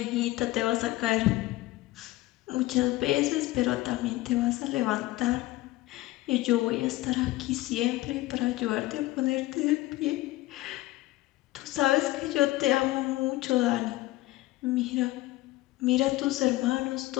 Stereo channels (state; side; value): quieter; right; 18.0 dB